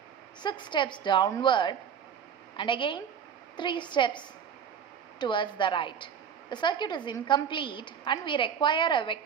6 steps downward, and again 3 steps towards the right. The circuit is incomplete and we require a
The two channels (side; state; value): left; quieter; 7.7 dB